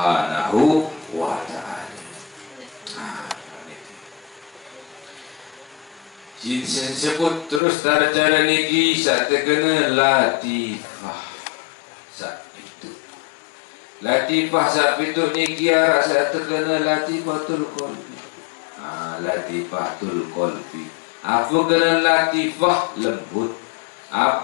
wa ta'ala. Jinsen sebut terus cara niki saat terkena latifah saat itu. Latifah saat itu niki arah saat terkena latifatul qalbi. Latifatul qalbi. Apa kena latifah lembut?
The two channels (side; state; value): right; drops out; at 7.6 s